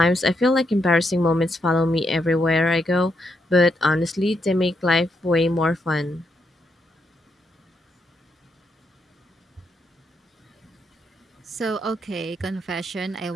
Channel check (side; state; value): both; normal; correlation 0.80